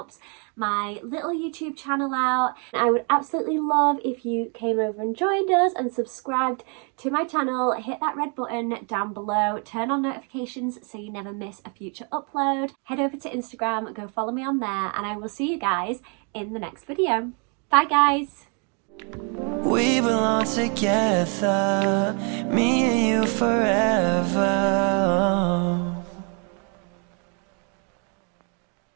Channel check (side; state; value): left; quieter; 37.5 dB